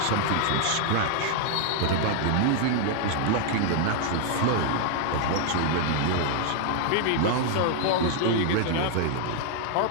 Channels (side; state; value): both; different; correlation 0.00